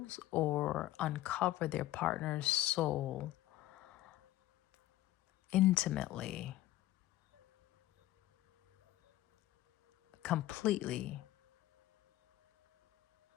or uncover their partner's soul intimately, completely,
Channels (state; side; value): quieter; right; 15.2 dB